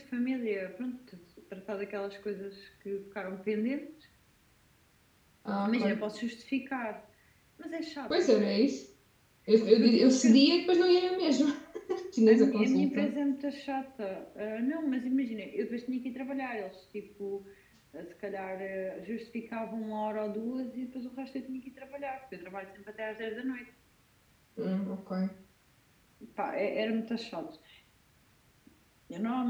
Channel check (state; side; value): identical; both; correlation 1.00